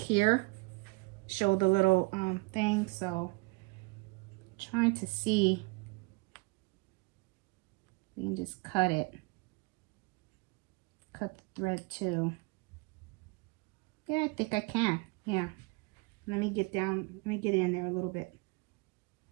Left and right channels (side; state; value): left; quieter; 27.3 dB